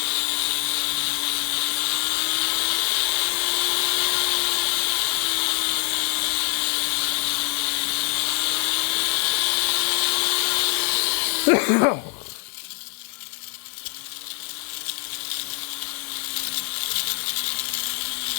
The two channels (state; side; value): quieter; right; 35.3 dB